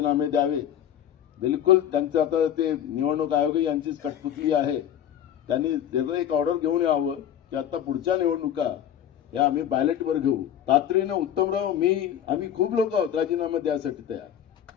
द्यावे. बिलकुल त्यांचं आता ते निवडणूक आयोग यांचीच कठपुतली आहे. त्यांनी त्याचं एक ऑर्डर घेऊन यावं की आता पुढच्या निवडणुका या आम्ही बॅलेटवर घेऊ. तातडीनं उत्तमराव आम्ही खूप लोक आहोत राजीनामा द्यायसाठी तयार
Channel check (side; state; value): right; quieter; 10.1 dB